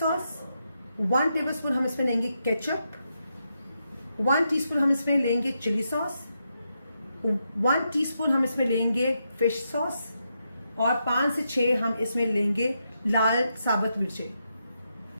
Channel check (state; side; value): inverted; both; correlation -0.83